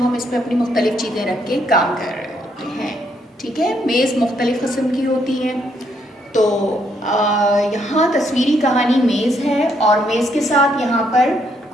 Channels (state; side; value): normal; both; correlation 0.73